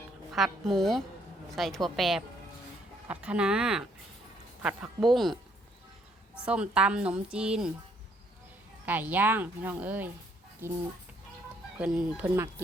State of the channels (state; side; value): normal; both; correlation 0.68